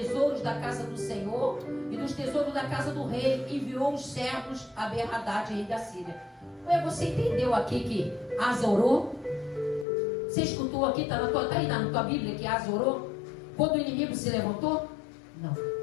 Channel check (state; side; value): drops out; right; at 9.9 s